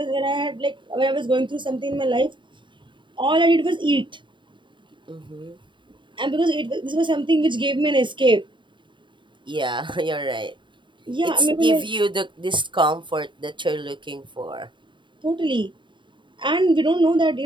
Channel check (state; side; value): late; left; 0.23 ms